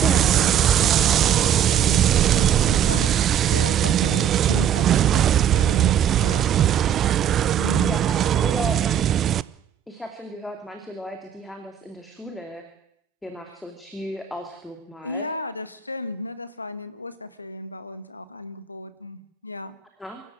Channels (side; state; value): left; quieter; 9.1 dB